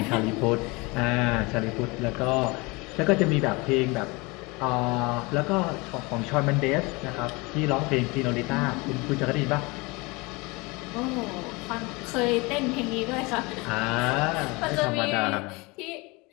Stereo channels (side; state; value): right; quieter; 25.6 dB